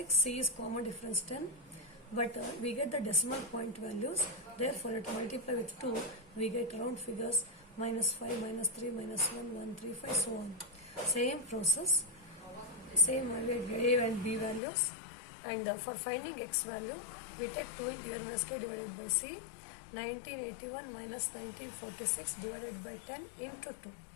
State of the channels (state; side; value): drops out; right; at 14.6 s